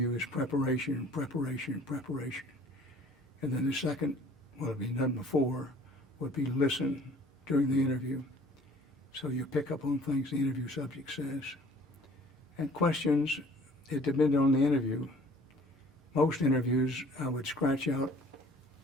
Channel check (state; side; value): normal; both; correlation 0.53